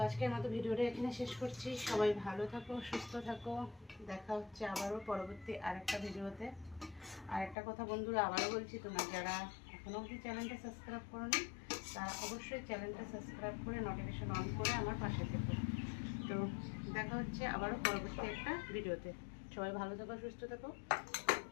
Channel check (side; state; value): right; drops out; at 7.6 s